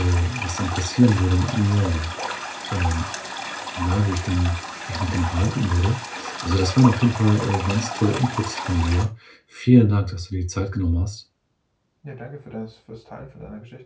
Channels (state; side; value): identical; both; correlation 1.00